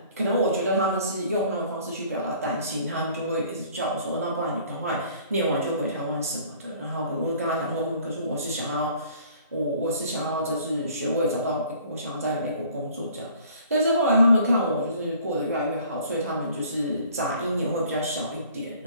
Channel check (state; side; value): inverted; both; correlation -0.53